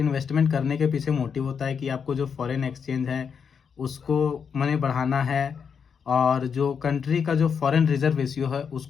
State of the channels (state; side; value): quieter; right; 6.6 dB